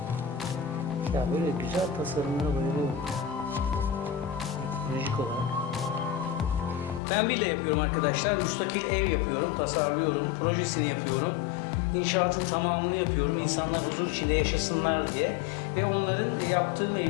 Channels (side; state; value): right; drops out; at 7.0 s